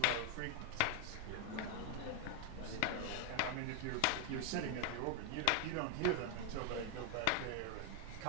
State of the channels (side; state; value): both; different; correlation 0.01